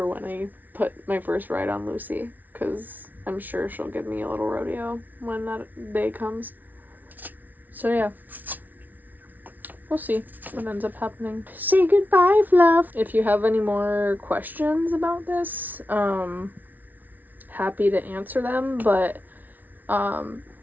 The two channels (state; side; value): late; left; 0.081 ms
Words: when I put my first ride on Lucy, because I'm sure she'll give me a little rodeo when that day comes. So yeah, we'll see what ends up happening. Say goodbye, Fluff. If you have any more questions about this, happy to answer them, but